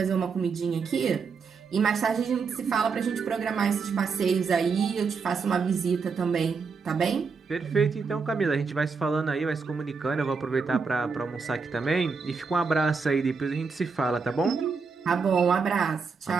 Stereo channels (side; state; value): left; quieter; 5.1 dB